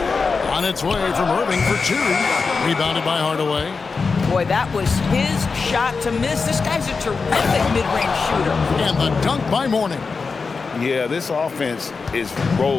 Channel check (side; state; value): right; quieter; 4.7 dB